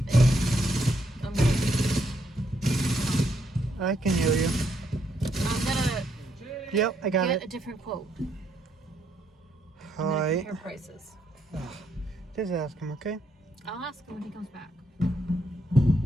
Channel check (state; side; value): normal; both; correlation 0.75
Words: I can hear you. I'm going to Yep, I got get a it. different quote. All I'm going to right. compare prices. Just ask him, okay? I'll ask him when he comes back.